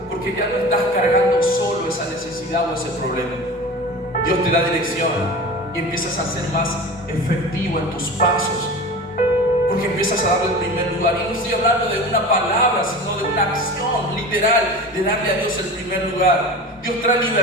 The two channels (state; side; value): normal; both; correlation 0.34